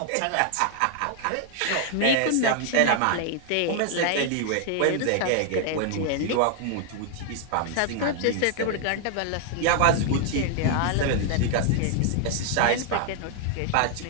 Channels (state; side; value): different; both; correlation 0.00